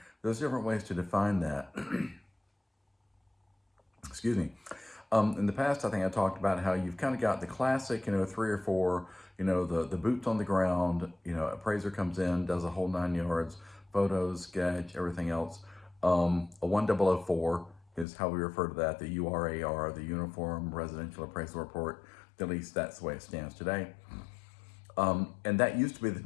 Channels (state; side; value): drops out; right; at 18.1 s